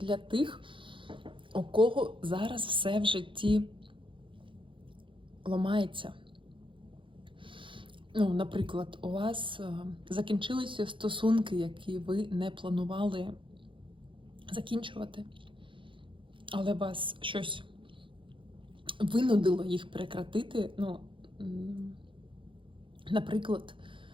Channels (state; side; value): late; left; 0.25 ms